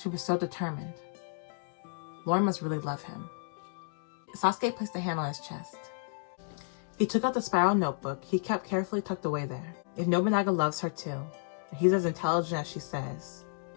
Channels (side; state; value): right; silent; digital silence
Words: She was so determined. Lauren must really love him. Sasuke placed a hand on his chest. He took out the spiral notebook he kept carefully tucked away there. If Nobunaga loves her too, and he's as intelligent as she says,